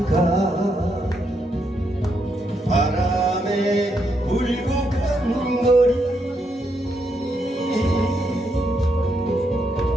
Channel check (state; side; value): normal; both; correlation 0.79